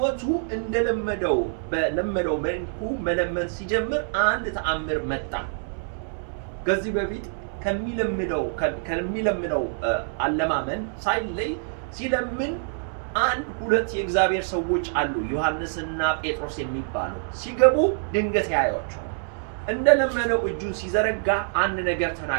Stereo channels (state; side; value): silent; left; 61 dB below the other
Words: እንደለመደው በለመደው መልኩ መለመን ሲጀምር አንድ ተአምር መጣ። ከዚህ በፊት ከሚለምነው አለማመን ሳይለይ ሲለምን አንድ ሁለት የእግዚአብሔር ሰዎች አሉ፣ ዮሐንስና ጴጥሮስ የሚባሉ። ሲገቡ ድንገት ያዩአቸው። እንደለመነው እጁን ሲዘረጋ አንድ ነገር